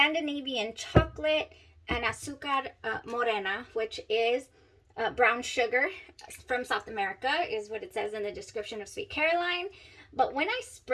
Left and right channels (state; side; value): identical; both; correlation 1.00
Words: chocolate and azúcar morena, which is brown sugar from South America, is what it says in the description of Sweet Caroline. But when I